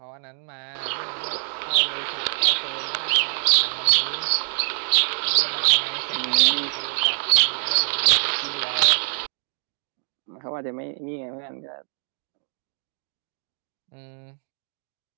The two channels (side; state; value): left; silent; digital silence